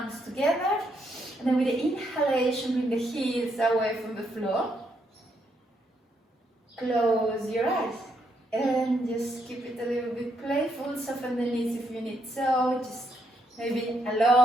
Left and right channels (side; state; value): both; normal; correlation 0.76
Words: together, and then with the inhalation, bring the heels away from the floor. Close your eyes, and just keep it a little bit playful, soften the knees if you need so, just maybe a